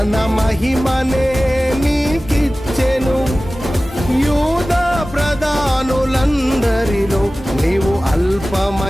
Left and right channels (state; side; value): normal; both; correlation 0.97